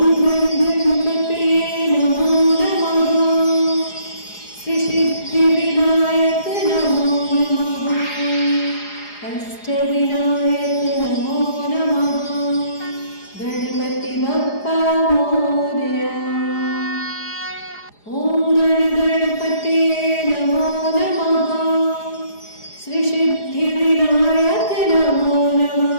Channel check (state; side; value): late; right; 4.8 ms